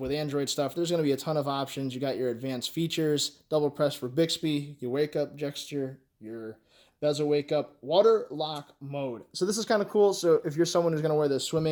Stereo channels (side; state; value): both; identical; correlation 1.00